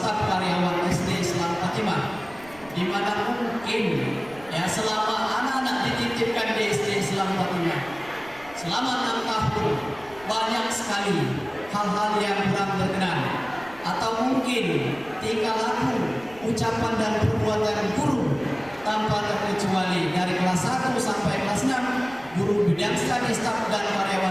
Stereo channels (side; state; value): right; noise; rumble, 23 dB below the sound